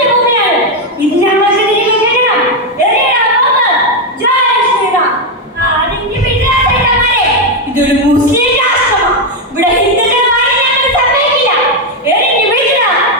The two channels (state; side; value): normal; both; correlation 0.05